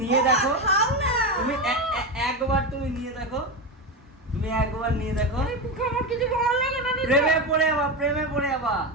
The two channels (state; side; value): normal; both; correlation 0.16